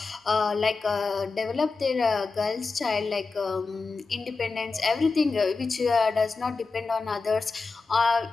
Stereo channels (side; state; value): right; quieter; 4.2 dB